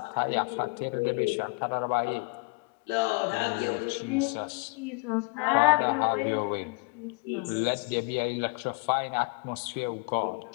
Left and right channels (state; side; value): quieter; right; 30.5 dB